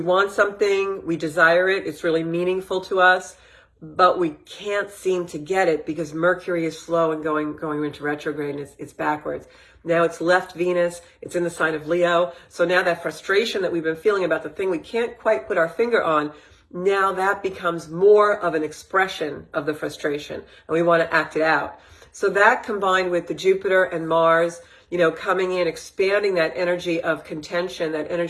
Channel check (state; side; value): identical; both; correlation 1.00